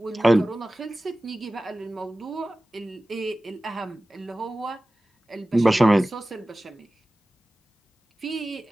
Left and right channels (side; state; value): both; normal; correlation 0.97